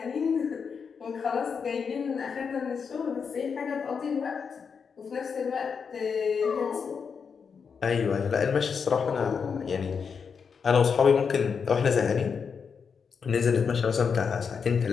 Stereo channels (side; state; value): right; quieter; 6.1 dB